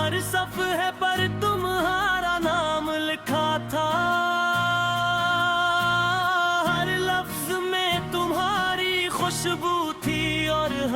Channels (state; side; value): identical; both; correlation 1.00